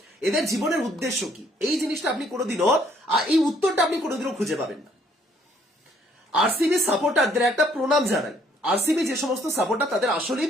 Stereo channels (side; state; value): both; normal; correlation 0.64